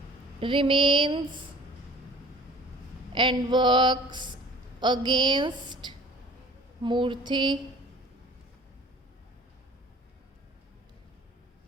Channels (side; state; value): both; normal; correlation 0.47